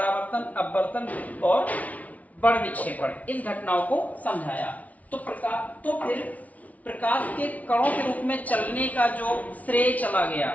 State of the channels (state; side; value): late; right; 0.071 ms